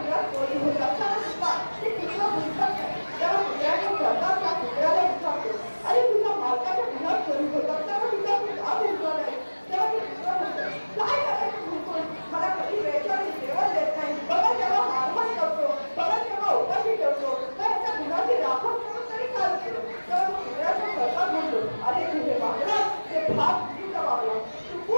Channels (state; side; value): inverted; both; correlation -1.00